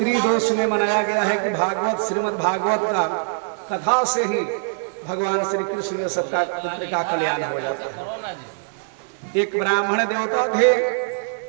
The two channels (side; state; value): left; silent; digital silence